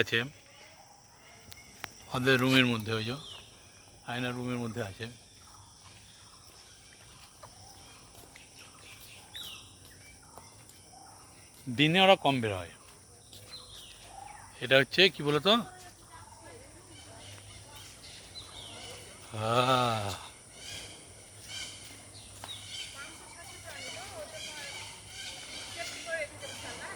আছে, ওদের রুমের মধ্যে, ওই যে আয়না রুমের মধ্যে আছে। দিনে ওরা কম বের হয়। এটা হচ্ছে কি বলতো,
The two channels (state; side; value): identical; both; correlation 1.00